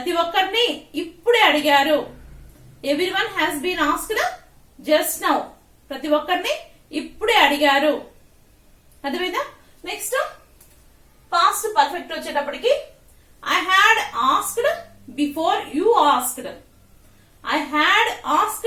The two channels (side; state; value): both; identical; correlation 1.00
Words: ఒక్కరిని ఇప్పుడే అడిగారు. Everyone has been asked just now. ప్రతి ఒక్కరిని ఇప్పుడే అడిగారు. అర్థమైందా? నెక్స్ట్ పాస్ట్ పర్ఫెక్ట్ వచ్చేటప్పటికి I had asked before you asked. I had